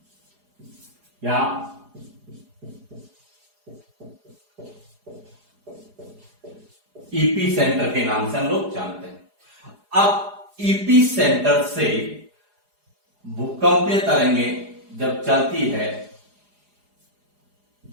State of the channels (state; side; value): late; left; 4.8 ms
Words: या ईपी सेंटर के नाम से हम लोग जानते हैं। अब ईपी सेंटर से भूकंपीय तरंगें जब चलती है